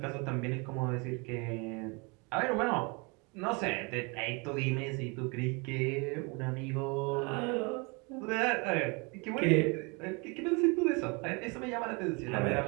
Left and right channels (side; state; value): left; quieter; 30.2 dB